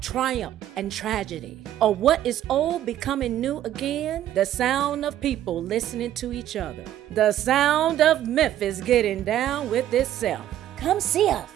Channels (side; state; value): left; quieter; 12.1 dB